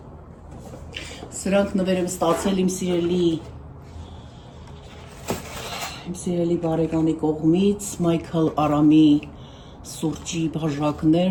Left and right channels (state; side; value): identical; both; correlation 1.00